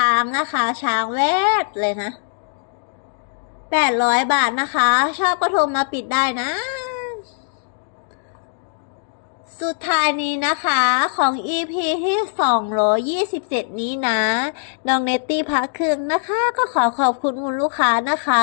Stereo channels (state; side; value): silent; right; digital silence